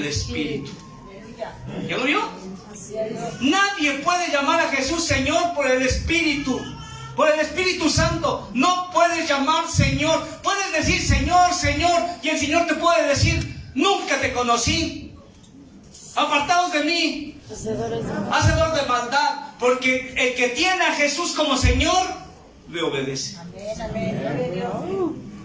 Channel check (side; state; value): both; identical; correlation 1.00